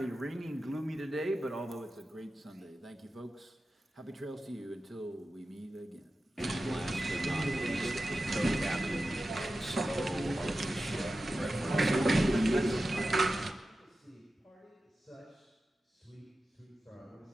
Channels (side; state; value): both; normal; correlation 0.93